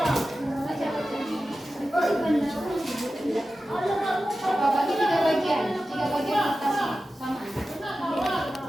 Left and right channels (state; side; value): normal; both; correlation 0.93